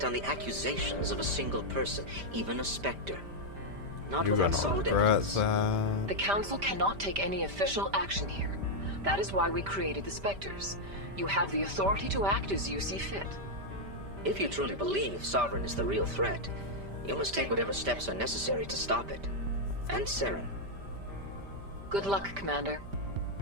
on the accusations of a single person, even a Spectre. Not without solid evidence. The Council cannot take any official action here. That is why we created the Spectres. You have the authority to act as you see fit. If you truly believe Sovereign is the real threat, you must take whatever steps are necessary to stop it. And Saren. Good luck, Commander.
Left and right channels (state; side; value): late; left; 5.1 ms